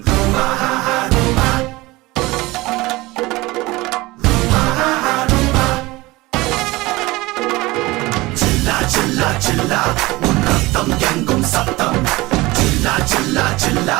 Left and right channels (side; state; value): left; quieter; 20.8 dB